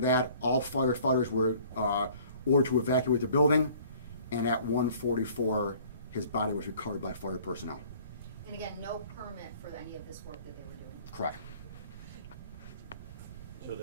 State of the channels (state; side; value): inverted; both; correlation -0.53